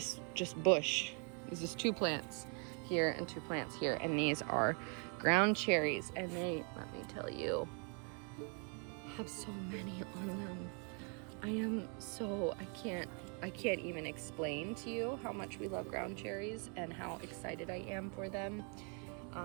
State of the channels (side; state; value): left; quieter; 38.4 dB